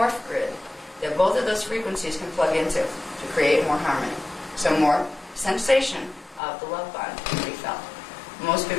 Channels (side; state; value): right; drops out; at 6.4 s